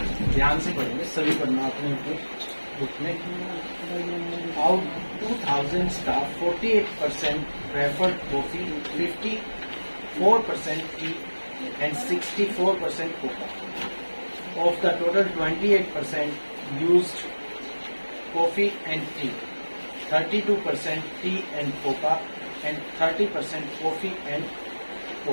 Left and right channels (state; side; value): inverted; both; correlation -1.00